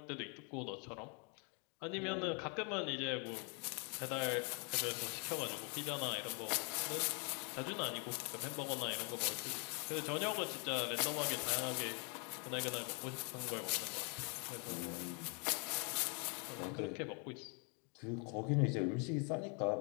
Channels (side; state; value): right; quieter; 36.7 dB